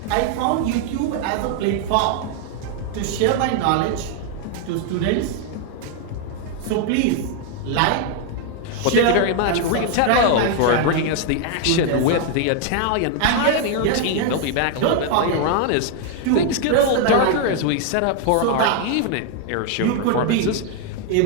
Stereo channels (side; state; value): both; different; correlation 0.00